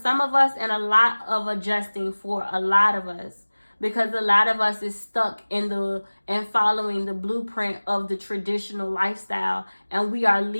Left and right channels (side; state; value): both; inverted; correlation -1.00